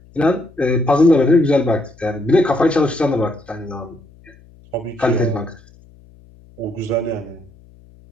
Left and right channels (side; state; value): left; noise; hum, 26 dB below the sound